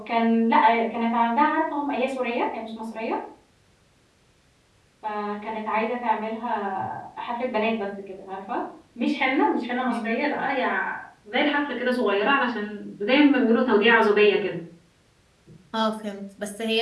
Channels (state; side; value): identical; both; correlation 1.00